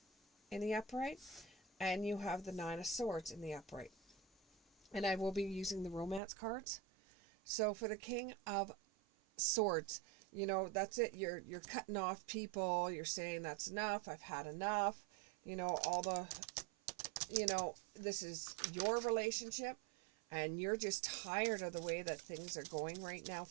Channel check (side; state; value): left; drops out; at 6.2 s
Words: in the upright. And you have the 9 of Swords in the upright. And I will be using the romance cards. So for the King of Swords, you know, that's it. You're cutting off people. You're saying that's enough. I've had enough. You know, all the, you know, this is your relationship. And you're just tired of the way that things are going right now